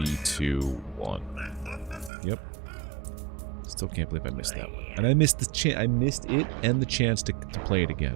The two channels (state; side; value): drops out; left; at 2.1 s